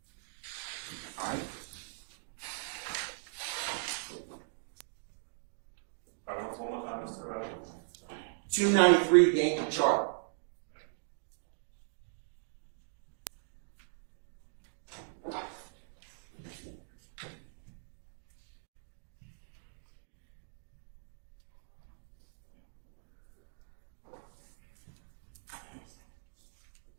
All right. 293 Yankee chart.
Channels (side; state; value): left; silent; digital silence